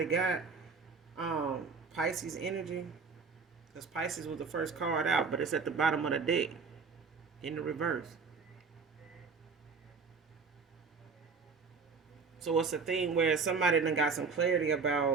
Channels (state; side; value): quieter; left; 5.0 dB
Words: got. Pisces energy. Because Pisces was the first card out, but it's at the bottom of the deck in the reverse. So it's a thing where somebody done got some clarity